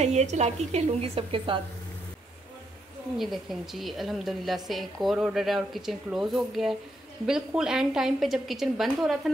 ये चालाकी खेलूँगी सबके साथ। ये देखें जी, अल्हम्दुलिल्लाह से एक और ऑर्डर है और किचन क्लोज़ हो गया है। बिल्कुल एंड टाइम पे जब किचन बंद हो रहा था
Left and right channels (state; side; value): normal; both; correlation 0.78